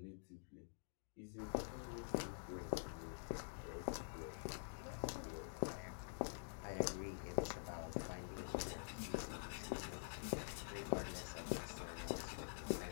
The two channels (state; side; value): silent; right; digital silence